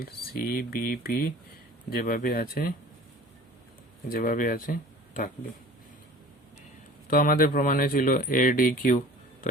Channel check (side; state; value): both; normal; correlation 0.44